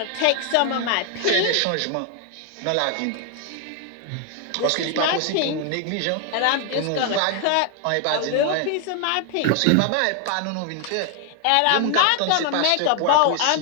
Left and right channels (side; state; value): both; different; correlation 0.00